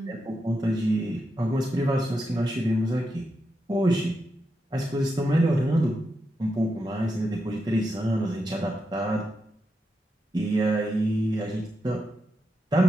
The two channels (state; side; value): normal; both; correlation 0.86